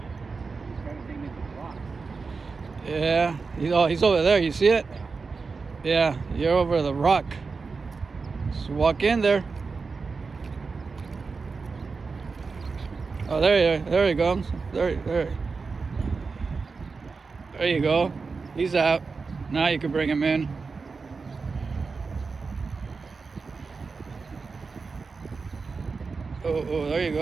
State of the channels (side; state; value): left; quieter; 4.6 dB